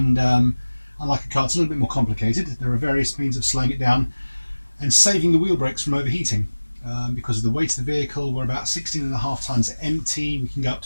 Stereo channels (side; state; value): both; inverted; correlation -1.00